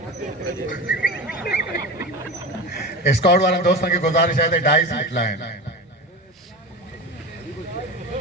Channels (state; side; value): normal; both; correlation 0.27